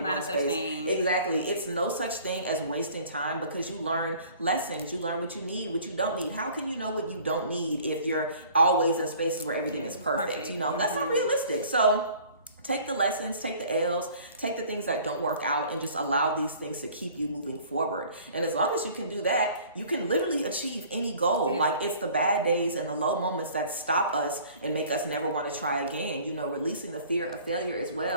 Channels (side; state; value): both; inverted; correlation -0.51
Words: one space. Exactly. It's no such thing as wasting time, because you learn lessons. You learn what you need, what you don't need. How can you know what you don't need if you're always in spaces where everything is perfect? That's not realistic. So take the lessons, take the L's, take the things that don't work out, and just allow these things to keep you moving forward. And as long as you can do that, you can literally achieve any goal. Like, it's the bad days and the low moments that stop us and make us never want to try again. Releasing the fear of failure as